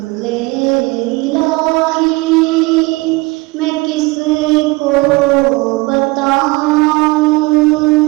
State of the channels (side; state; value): left; quieter; 23.3 dB